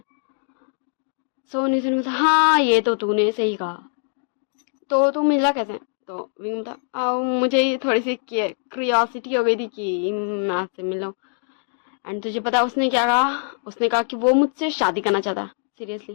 सो नेसन बता हाँ ये तो तूने सही कहा, तो तू मिला कैसे। तो विंग बता मुझे ये थोड़ी सी क्रियोसिटी हो गई थी कि मैं आपसे मिलूं। एंड तुझे पता है उसने क्या कहा, उसने कहा कि वो मुझसे शादी करना चाहता है,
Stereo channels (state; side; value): silent; right; digital silence